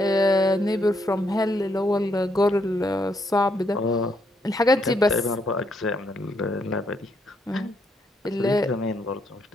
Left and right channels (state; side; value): normal; both; correlation 0.75